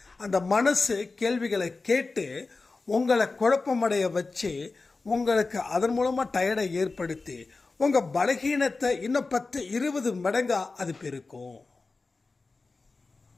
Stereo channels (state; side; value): quieter; right; 3.8 dB